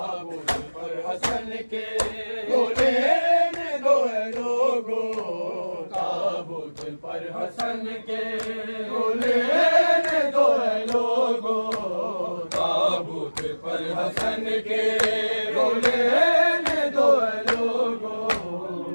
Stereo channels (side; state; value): both; inverted; correlation -1.00